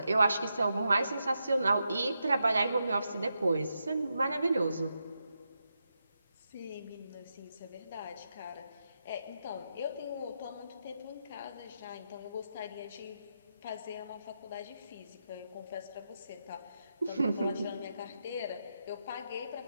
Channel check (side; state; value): both; inverted; correlation -0.85